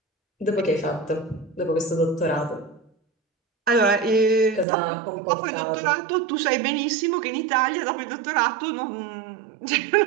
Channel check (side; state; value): left; drops out; at 4.7 s